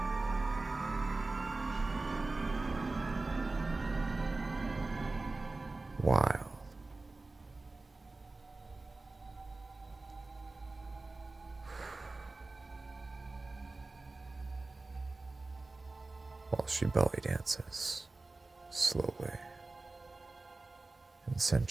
Wild. While she belly dances, slowly and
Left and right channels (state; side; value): quieter; left; 3.3 dB